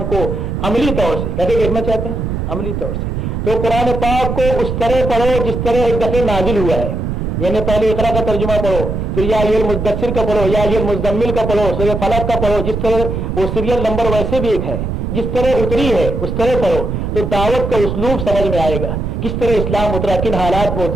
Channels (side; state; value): right; noise; rumble, 3 dB below the sound